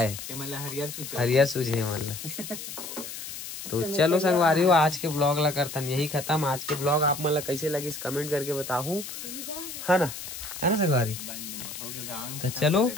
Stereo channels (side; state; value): left; noise; hiss, 9 dB below the sound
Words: हरियर सूझे मतलब। तो चलो संगवारी हो आज के ब्लॉग ला करतन यही खत्म। आज के ब्लॉग आप मतलब कैसे लगे इस कमेंट करके बताओ, है ना संगवारी। तो चलो